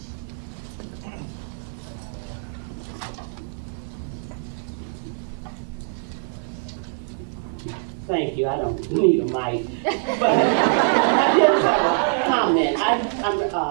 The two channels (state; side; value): silent; left; digital silence